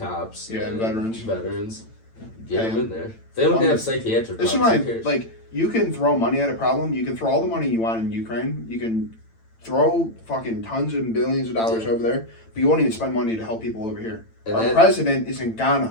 Yeah, and veterans. Get Pay them in there. They don't Well, have psychiatric This is problems. why, Who cares? like, you can throw money at a problem. You can throw all the money you want in Ukraine. You can throw fucking tons and billions of dollars over there, but you won't even spend money to help people over here. And Our that- president is in Ghana,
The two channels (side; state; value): right; late; 8.9 ms